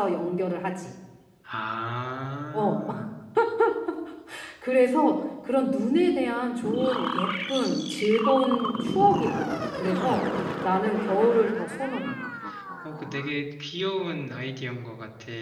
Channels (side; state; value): both; identical; correlation 1.00